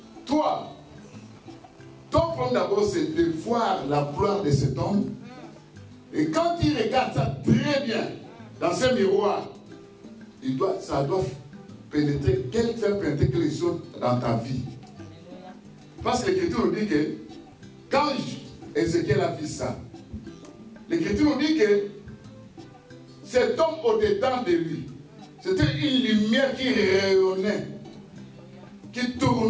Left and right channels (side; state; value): both; identical; correlation 1.00